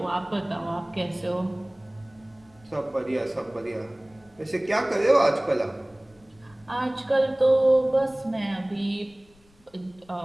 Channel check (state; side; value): noise; left; rumble, 30 dB below the sound